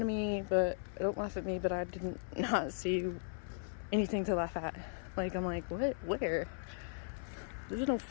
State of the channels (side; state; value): right; silent; 53 dB below the other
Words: of me, but don't laugh at me, but I didn't not see anything to laugh at. Like, I'm like, what? Where? There's no